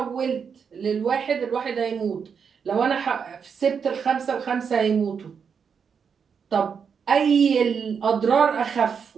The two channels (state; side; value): quieter; left; 6.5 dB